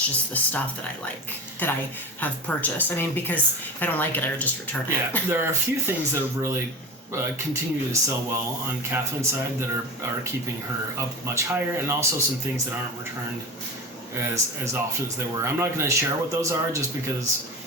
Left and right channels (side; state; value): both; normal; correlation 0.28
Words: just the stuff that I like, that I have purchased. I mean, because if I don't like it, I would just return it. Yeah, there are a few things that have really continue to sell well on Catherine's side that are keeping her up much higher, and also some things that aren't returned as often as they were. I'm not going to share what those are just because